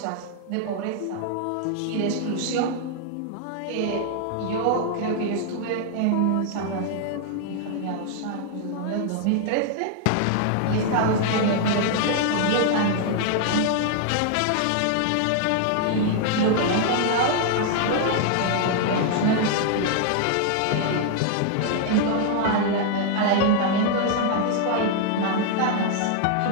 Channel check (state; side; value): different; both; correlation 0.00